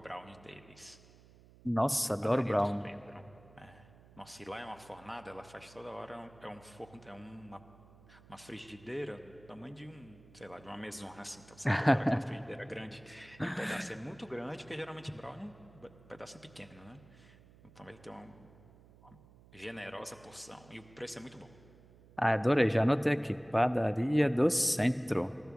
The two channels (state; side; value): noise; right; hum, 24 dB below the sound